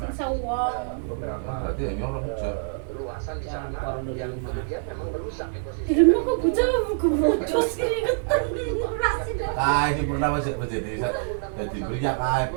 uang. beberapa berarti ya nyolong luasan di sana yang kemudian memang merusak Di ekosistem. rumah kok bocor keringetan nasi dong. ini pernah masih jadi beriak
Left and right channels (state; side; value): silent; left; digital silence